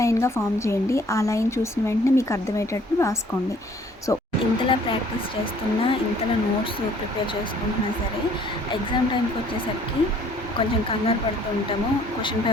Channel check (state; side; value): normal; both; correlation 0.58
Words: ఫామ్ చేయండి. ఆ లైన్ చూసిన వెంటనే మీకు అర్థమయ్యేటట్టు రాసుకోండి. సో ఇంతలా ప్రాక్టీస్ చేస్తున్నా, ఇంతలా నోట్స్ ప్రిపేర్ చేసుకుంటున్నా సరే, ఎగ్జామ్ టైంకి వచ్చేసరికి కొంచెం కంగారు పడుతూ ఉంటాము. క్వశ్చన్